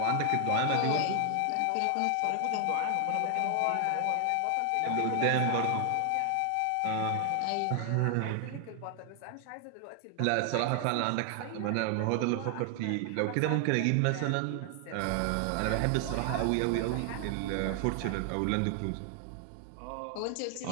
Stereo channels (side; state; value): both; different; correlation 0.00